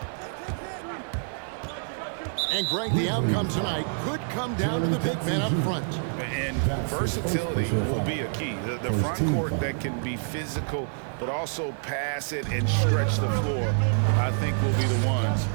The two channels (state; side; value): silent; left; 58 dB below the other